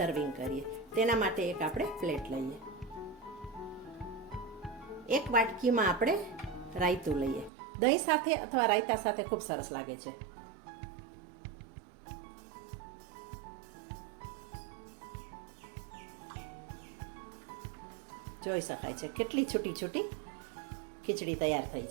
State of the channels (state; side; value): drops out; left; at 7.5 s